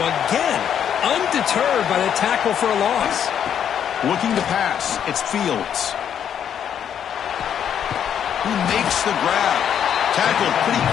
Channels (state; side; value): quieter; right; 8.9 dB